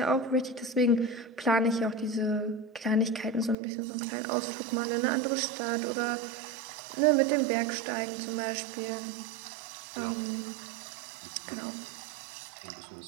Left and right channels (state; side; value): drops out; left; at 3.6 s